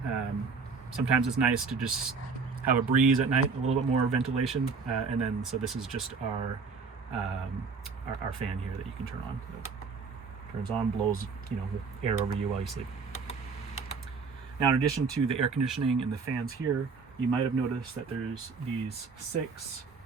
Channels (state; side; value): quieter; left; 5.0 dB